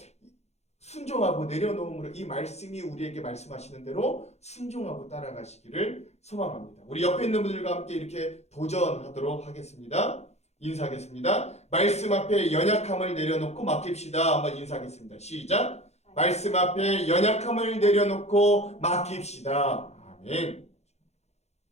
순종하고 내려놓음으로 이 말씀이 우리에게 말씀하시는 대로 순종하고 따라가시기를 소망합니다. 우리 옆에 있는 분들과 함께 이렇게 도전하도록 하겠습니다. 인사하겠습니다. 말씀 앞에 연약함을 내려놓고 맡깁시다. 한번 인사하겠습니다. 시작. 말씀 앞에 연약함을 내려놓고 맡깁시다. 아멘.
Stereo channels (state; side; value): late; right; 0.31 ms